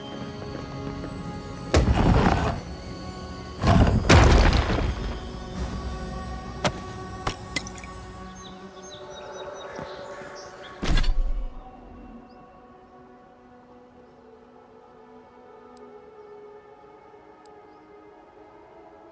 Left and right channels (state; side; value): identical; both; correlation 1.00